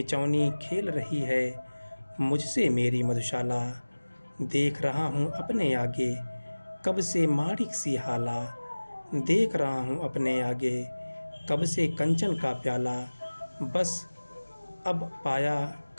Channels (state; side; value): inverted; both; correlation -1.00